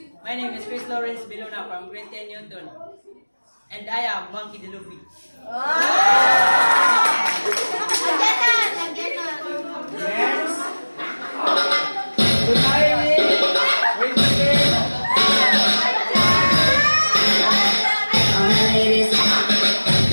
My name is Chris Lawrence Bilona from Grade 10 Newton. And I am Monkey the Luffy. Next. Good morning. Wait a minute.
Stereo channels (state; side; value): inverted; both; correlation -1.00